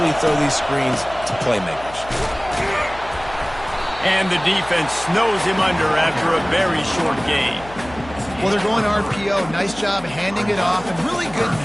throw these screens to playmakers. And the defense snows him under after a very short gain. Well, they're going RPO. Nice job handing it off, and really good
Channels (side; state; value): left; noise; hum, 17 dB below the sound